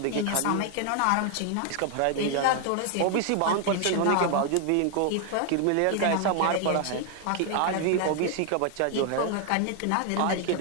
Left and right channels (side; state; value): both; different; correlation 0.00